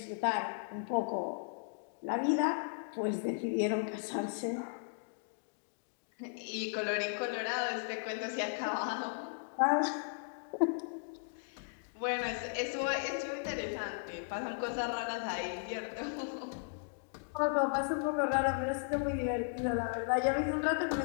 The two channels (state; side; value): silent; right; digital silence